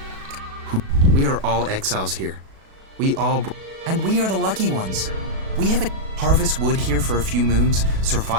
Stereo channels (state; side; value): late; left; 37 ms